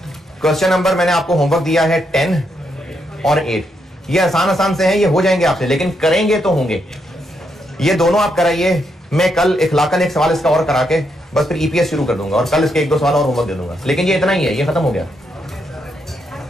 क्वेश्चन नंबर मैंने आपको होमवर्क दिया है 10 और 8। ये आसान आसान से हैं, ये हो जाएंगे आपसे, लेकिन करेंगे तो होंगे। ये दोनों आप कराइए, मैं कल इखलाकन एक सवाल इसका और करा के बस फिर ईपीएस शुरू कर दूंगा, और कल इसके 1-2 सवाल और होमवर्क दे दूंगा। लेकिन ये इतना ही है, ये खत्म हो गया।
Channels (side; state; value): both; normal; correlation 0.79